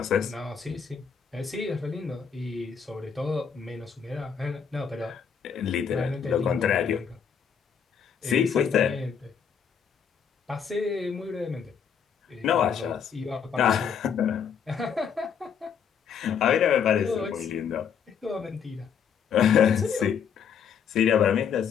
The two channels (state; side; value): quieter; right; 7.3 dB